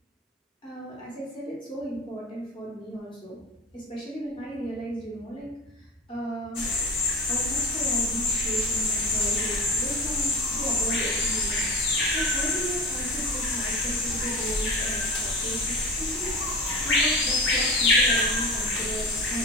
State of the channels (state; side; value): normal; both; correlation 0.30